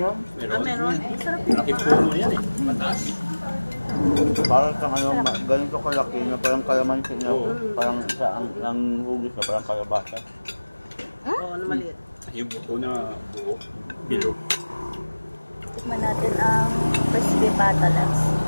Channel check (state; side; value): inverted; both; correlation -1.00